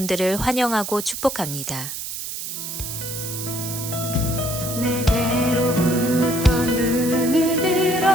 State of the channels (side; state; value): right; noise; hiss, 7 dB below the sound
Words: 환영하고 축복합니다. 내게로부터 눈을